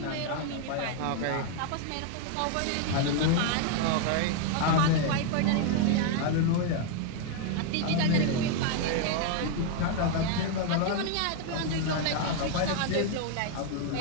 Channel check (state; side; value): different; both; correlation 0.00